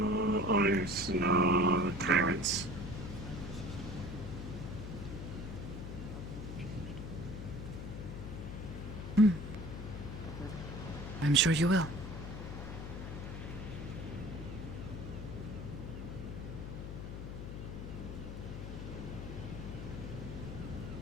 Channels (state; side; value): noise; left; hum, 7 dB below the sound